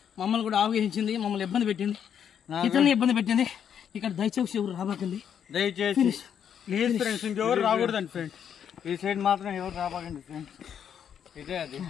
మమ్మల్ని కూడా ఆవగించింది మమ్మల్ని ఇబ్బంది పెట్టింది ఇతరులని ఇబ్బంది పెట్టింది ఇక్కడ దయచేసి ఎవరు రాబాకండి దయచేసి లేదు ఫ్రెండ్స్ ఇంకెవరు రాకూడదండి ఫ్రెండ్స్ ఈ సైడ్ మాత్రం ఎవరు రాబాకండి ఫ్రెండ్స్ ఇదే అది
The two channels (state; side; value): quieter; right; 8.5 dB